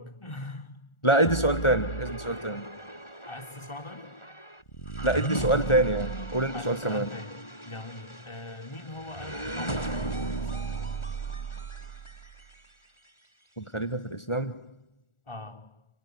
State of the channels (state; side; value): late; right; 1.4 ms